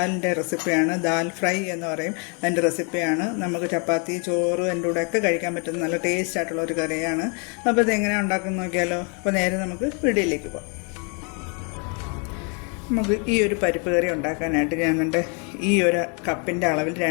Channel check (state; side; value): quieter; right; 36.5 dB